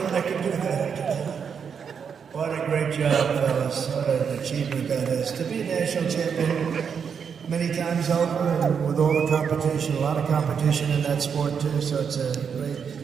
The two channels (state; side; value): quieter; left; 6.8 dB